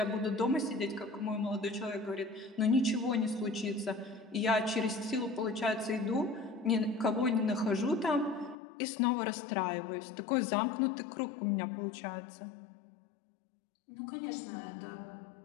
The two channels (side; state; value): right; drops out; at 8.6 s